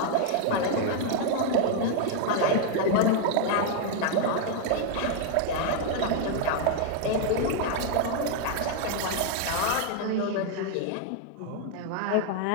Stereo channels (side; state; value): both; different; correlation 0.00